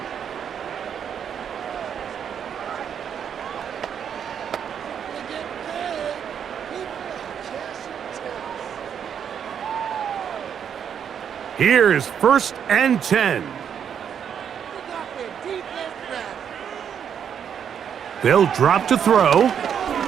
Here's 1st and 10. They'll drop to throw.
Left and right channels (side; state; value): left; quieter; 8.1 dB